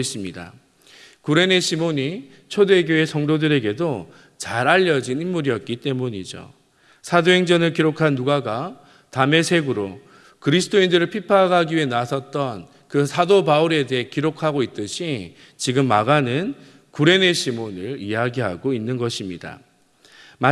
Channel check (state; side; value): identical; both; correlation 1.00